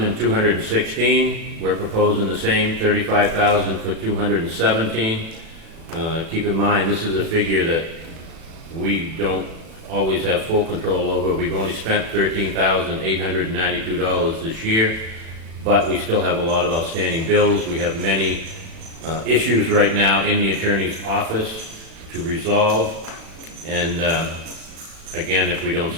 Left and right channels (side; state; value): left; late; 36 ms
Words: We're proposing the same $35,000 for 2017. Keep in mind, this is a figure that we don't always have full control over. We've only spent $13,892 this year, but we still have a lot of outstanding bills. We have many issues right now in the attorney's office to resolve. And again, if we don't